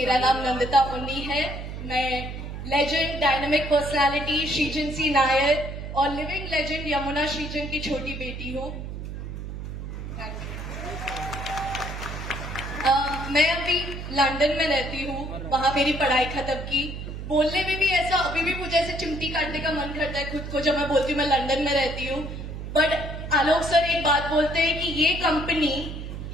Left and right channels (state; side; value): noise; right; hum, 8 dB below the sound